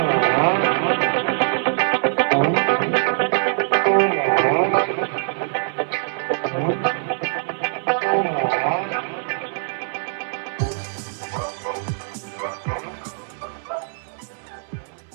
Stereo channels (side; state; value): left; silent; 61 dB below the other